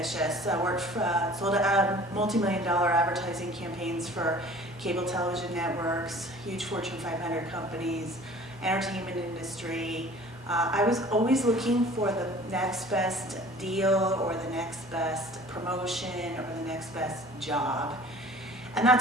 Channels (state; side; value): normal; both; correlation 0.47